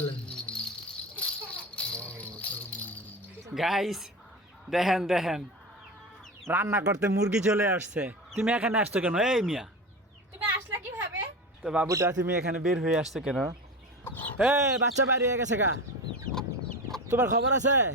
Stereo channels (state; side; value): normal; both; correlation 0.26